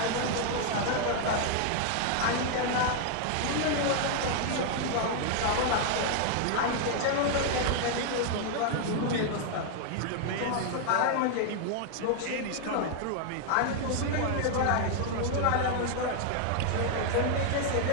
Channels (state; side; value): different; both; correlation 0.00